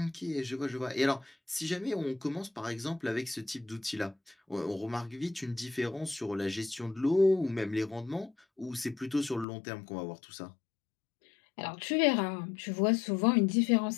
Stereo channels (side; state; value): right; drops out; at 9.5 s